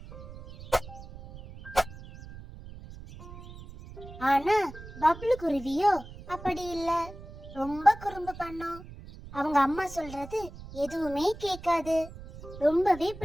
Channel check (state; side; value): noise; right; rumble, 15 dB below the sound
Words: ஆனா பப்ளு குருவியோ அப்படி இல்ல, ரொம்ப குறும்பு பண்ணும். அவங்க அம்மா சொல்றது எதுவுமே கேட்காது, ரொம்பவே